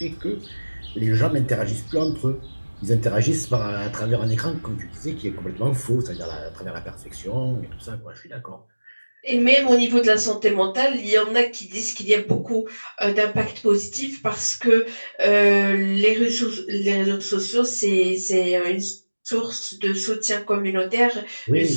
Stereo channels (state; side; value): inverted; both; correlation -1.00